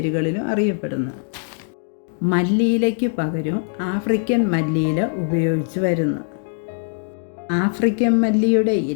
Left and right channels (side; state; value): right; silent; digital silence